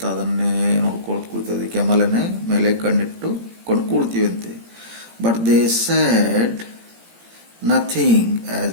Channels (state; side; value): late; left; 17 ms